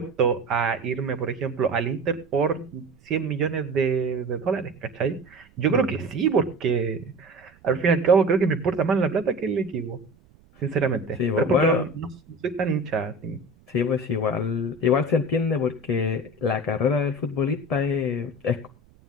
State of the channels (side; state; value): right; noise; rumble, 29 dB below the sound